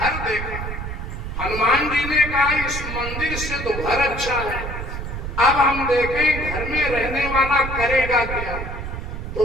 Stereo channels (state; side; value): noise; right; rumble, 6 dB below the sound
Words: देखा। हनुमान जी ने कहा इस मंदिर से तो घर अच्छा है, अब हम देखें घर में रहने वाला करेगा क्या। तो